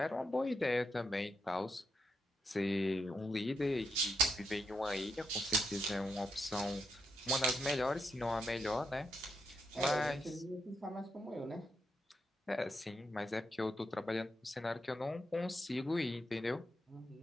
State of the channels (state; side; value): normal; both; correlation 0.81